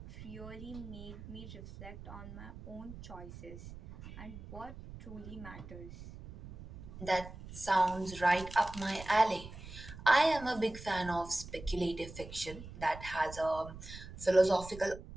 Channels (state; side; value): noise; right; rumble, 13 dB below the sound